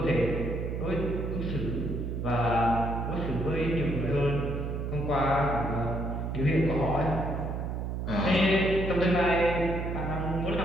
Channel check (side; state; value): right; noise; hum, 3 dB below the sound